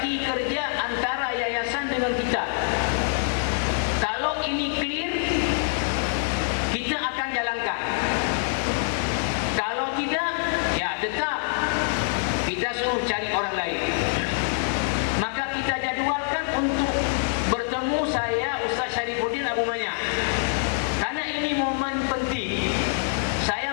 kerja antara yayasan dengan kita. Kalau ini clear, kita akan jalankan. Kalau tidak, ya tetap kita suruh cari orang lain. Maka kita jadualkan untuk bertemu saya, Ustaz Syarifuddin Abu Manya. Karena ini momen penting.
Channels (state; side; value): silent; right; digital silence